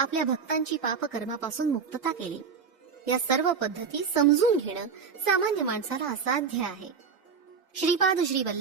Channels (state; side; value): quieter; left; 5.9 dB